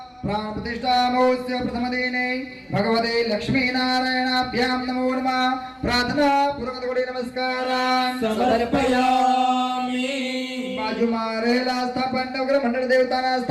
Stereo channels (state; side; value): identical; both; correlation 1.00